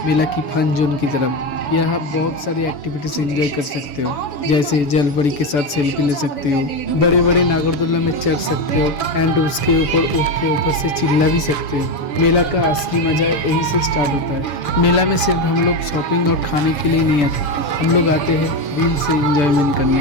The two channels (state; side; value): late; right; 6.9 ms